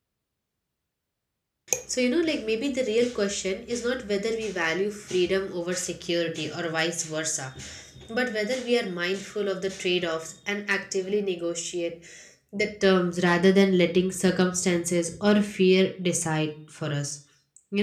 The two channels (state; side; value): identical; both; correlation 1.00